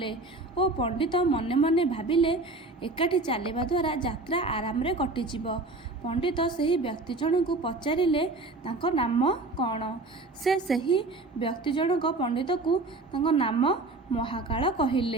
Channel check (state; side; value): quieter; left; 3.1 dB